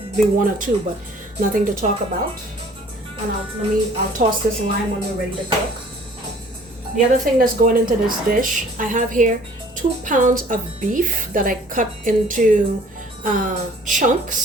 be 1 or 2, but nothing to talk about. And I'll toss this lime when we're ready to cook. The other thing that's going into this dish, I have here 2 pounds of beef that I cut into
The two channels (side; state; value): both; normal; correlation 0.53